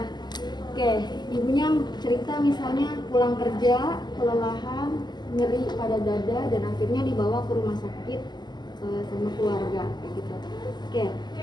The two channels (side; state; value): right; late; 0.21 ms